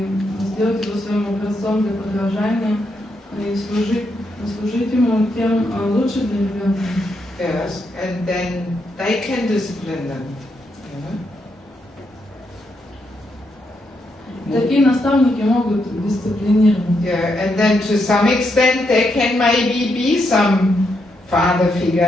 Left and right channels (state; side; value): normal; both; correlation 0.80